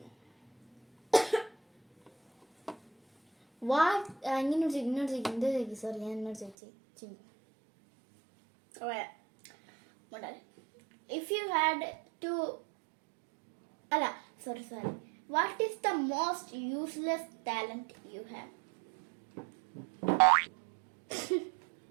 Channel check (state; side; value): drops out; left; at 6.6 s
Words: സോറി ഞാൻ എന്നോട് ചോദിച്ചു. If you had to sorry what is the most useless talent you have?